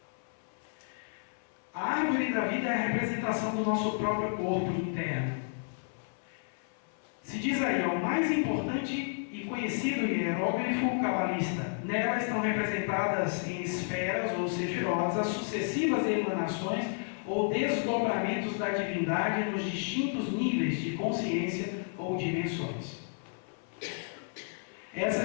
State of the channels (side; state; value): right; silent; 57 dB below the other